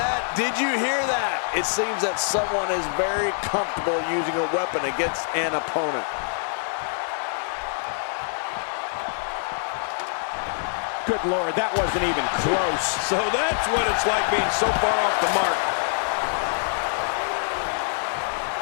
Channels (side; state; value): right; silent; digital silence